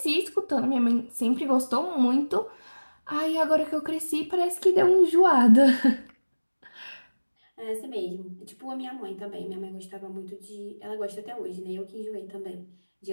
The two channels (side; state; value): both; inverted; correlation -1.00